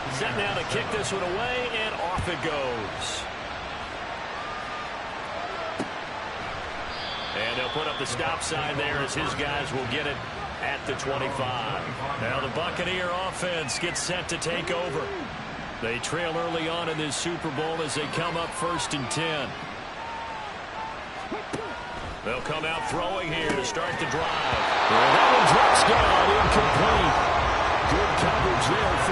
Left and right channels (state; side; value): identical; both; correlation 1.00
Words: Set now to kick this one away, and off it goes. And they'll put up the stop sign there as his guys will get it at the 25. Now the Buccaneer offense gets set to take over. They trail early on in this Super Bowl as they come up 1st and 10. They'll come out throwing here to start the drive. And that one drops down, incomplete. Good coverage there,